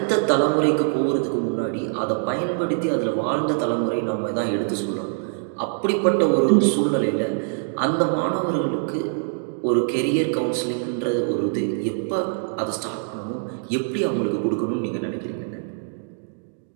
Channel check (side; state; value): left; silent; digital silence